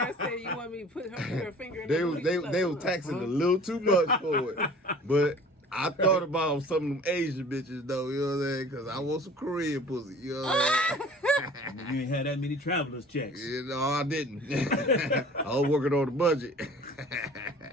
said, "You want me to put her finger in They the was booty?" they was taxing a little too much for it. But I thought about some of them Asian bitches though, you know what I'm saying? Because I want some Korean pussy, you know what I'm saying? You ain't had that many travelers checks. I didn't. I was working on the budget.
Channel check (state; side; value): normal; both; correlation 0.47